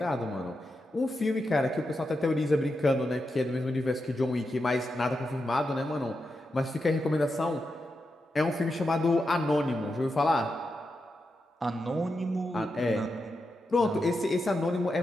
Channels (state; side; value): normal; both; correlation 0.87